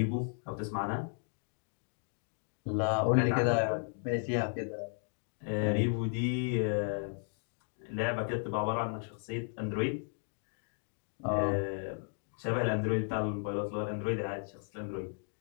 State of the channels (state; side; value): silent; right; 55 dB below the other